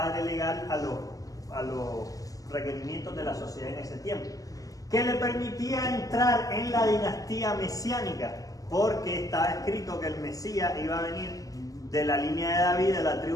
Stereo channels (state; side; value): late; right; 0.17 ms